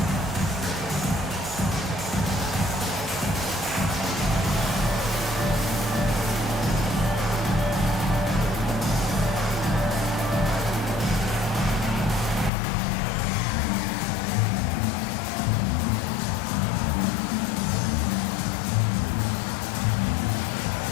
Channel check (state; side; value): drops out; right; at 12.5 s